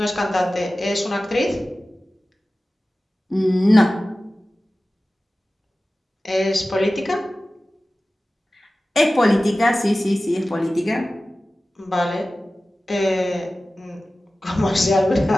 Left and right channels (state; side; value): normal; both; correlation 0.96